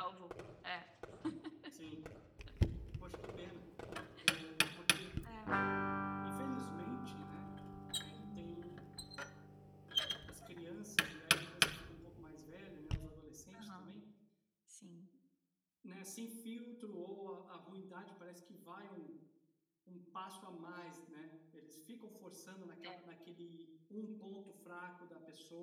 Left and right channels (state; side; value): identical; both; correlation 1.00